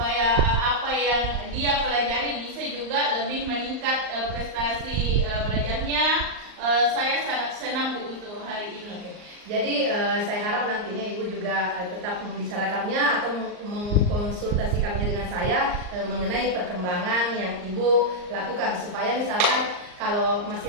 apa yang dia pelajari bisa juga lebih meningkat prestasi belajarnya. Saya sangat senang, Bu, untuk hari ini. Jadi saya harap nantinya Ibu juga tetap membicarakannya atau mengkonsultasikannya dengan saya mengenai perkembangan yang Ibu lakukan supaya misalkan kalau masih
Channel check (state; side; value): late; left; 39 ms